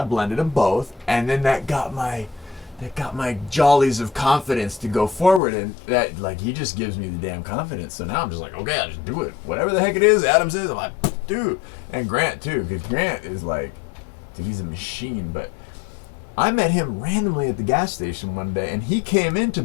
blended them both, and then that got my jollies of confidence to go forward, and that, like, he just gives me the damn confidence. So now I'm just like, okay, I'll just do it. Whatever the heck it is, Adam says, I'm like, dude. And Grant too, because Grant is like, dude, he's a machine. But I met him randomly at the gas station one day, and he came into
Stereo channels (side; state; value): right; drops out; at 5.4 s